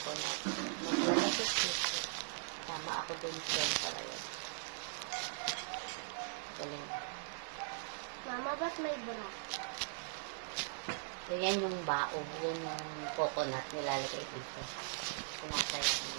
Maglalapit dito. Tama ako dun shell para yun. Galing. Mama, ba't may bra? So, yan yung bao. Yan yung coconut nilalagay dito. Sinasaya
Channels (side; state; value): left; silent; 51 dB below the other